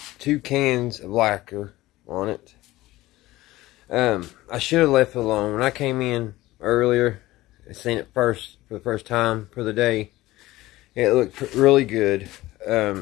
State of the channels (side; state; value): right; quieter; 17.5 dB